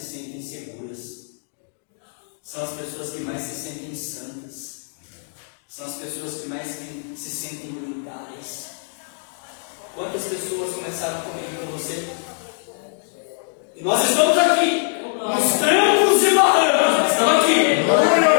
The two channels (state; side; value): silent; right; digital silence